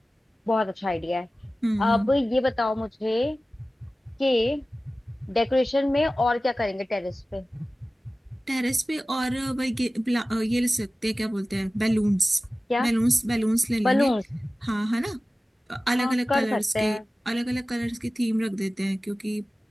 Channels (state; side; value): normal; both; correlation 0.96